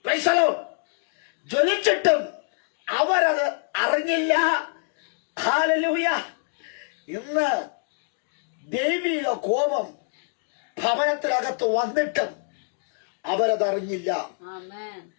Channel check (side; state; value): right; silent; digital silence